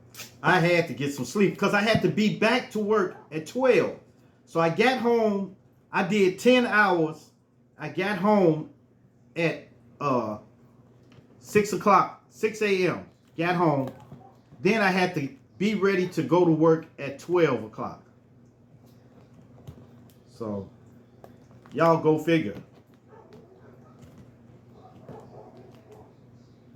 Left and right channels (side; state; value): both; identical; correlation 1.00